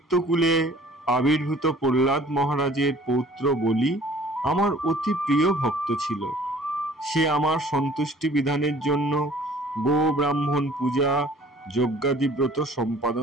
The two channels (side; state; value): both; normal; correlation 0.51